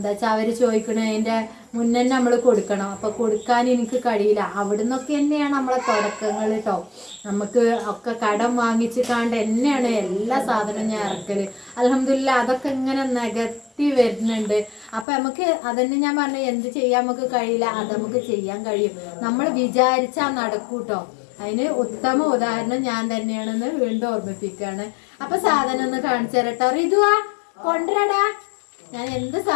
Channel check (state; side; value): drops out; right; at 15.1 s